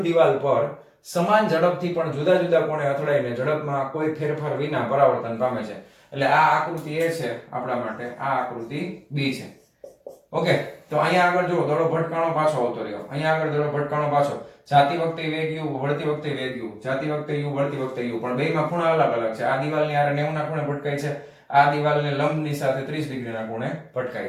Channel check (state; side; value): identical; both; correlation 1.00